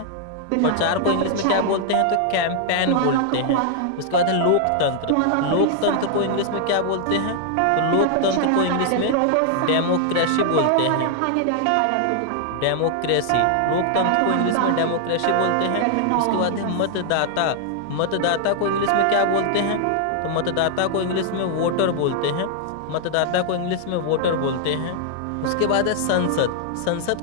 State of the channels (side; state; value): both; different; correlation 0.00